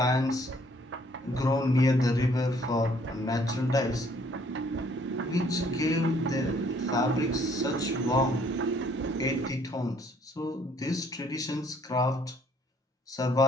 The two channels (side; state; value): both; normal; correlation 0.62